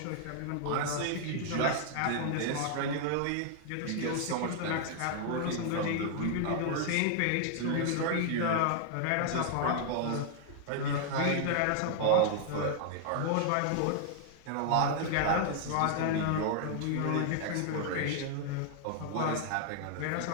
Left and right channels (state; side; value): different; both; correlation -0.01